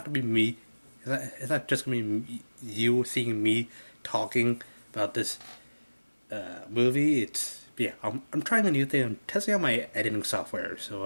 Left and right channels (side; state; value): both; inverted; correlation -1.00